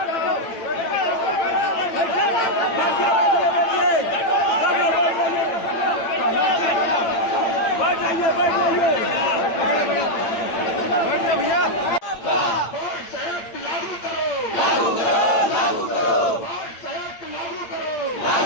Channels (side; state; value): right; late; 8.8 ms